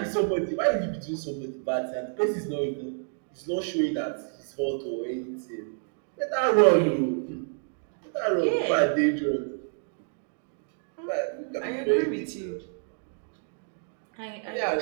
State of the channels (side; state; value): left; silent; 59 dB below the other